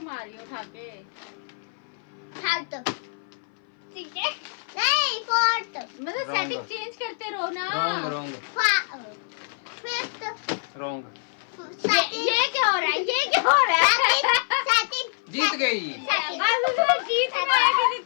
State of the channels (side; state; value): right; silent; 57 dB below the other